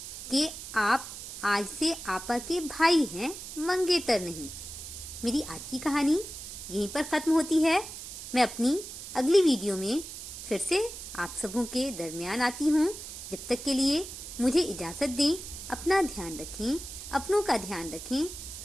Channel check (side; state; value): right; noise; hiss, 10 dB below the sound